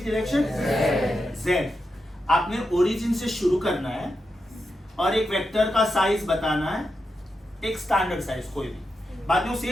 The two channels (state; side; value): normal; both; correlation 0.87